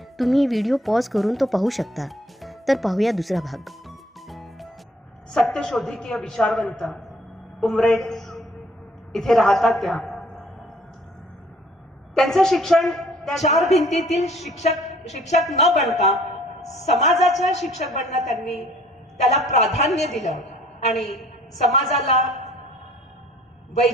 तुम्ही व्हिडिओ पॉज करून तो पाहू शकता. तर पाहूया दुसरा भाग. सत्यशोधिकीय विचारवंत उमरेड इथे राहतात त्यांचं शिक्षण त्या चार भिंतीतील शिक्षक न बनता समाजाचा शिक्षक बनणं त्यांनी त्याला प्राधान्य दिलं आणि समाजाला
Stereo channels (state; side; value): normal; both; correlation 0.58